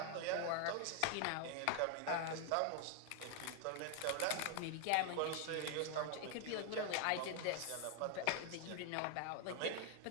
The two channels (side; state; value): both; different; correlation 0.00